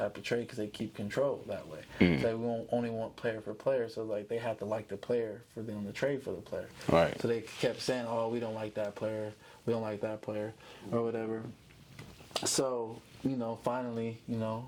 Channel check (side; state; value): both; identical; correlation 1.00